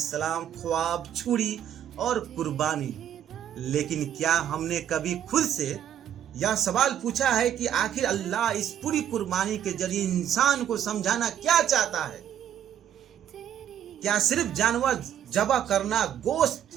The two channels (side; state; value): left; quieter; 10.1 dB